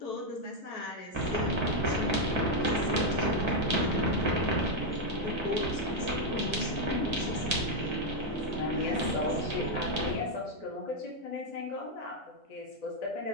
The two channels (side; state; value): both; normal; correlation 0.01